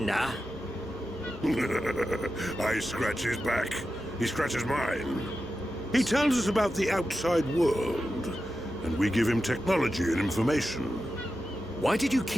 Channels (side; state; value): both; normal; correlation 0.91